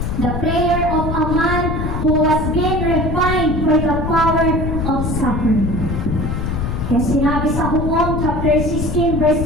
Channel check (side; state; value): left; noise; rumble, 2 dB below the sound